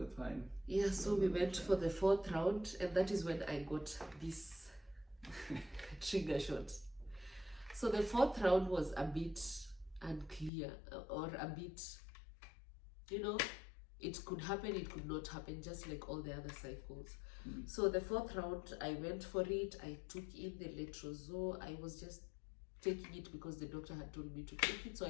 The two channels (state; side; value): drops out; right; at 10.5 s